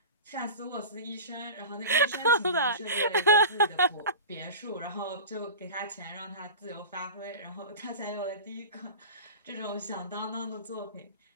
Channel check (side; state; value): both; inverted; correlation -0.33